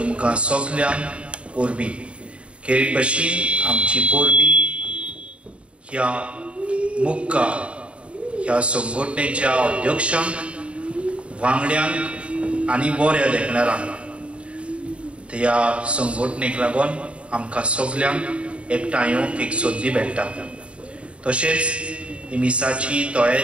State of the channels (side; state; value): left; late; 0.060 ms